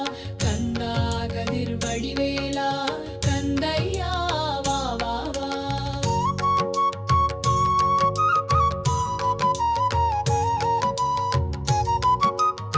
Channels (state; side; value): identical; both; correlation 1.00